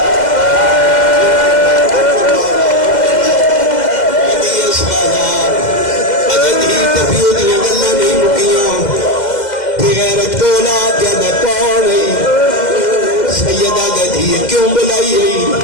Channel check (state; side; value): late; right; 2.0 ms